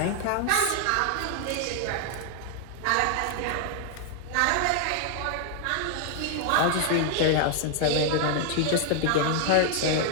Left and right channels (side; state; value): both; different; correlation 0.00